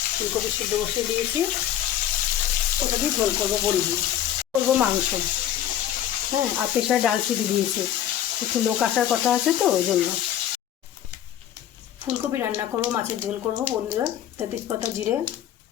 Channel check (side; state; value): right; quieter; 11.2 dB